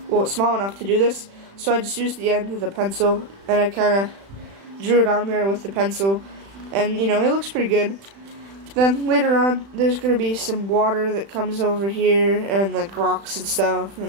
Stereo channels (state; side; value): late; left; 36 ms